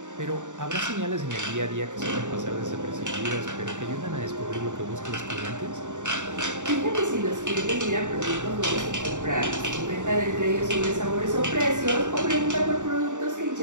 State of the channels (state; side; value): late; left; 0.86 ms